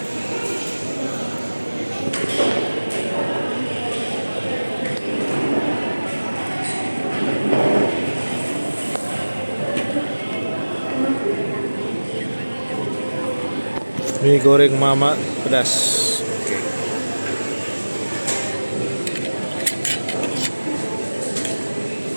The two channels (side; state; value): both; inverted; correlation -1.00